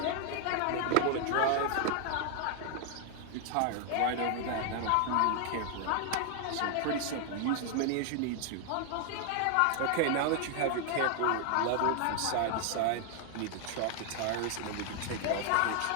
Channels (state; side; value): different; both; correlation 0.00